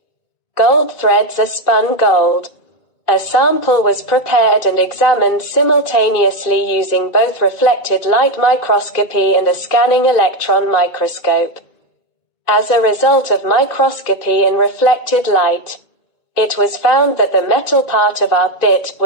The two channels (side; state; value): right; late; 2.8 ms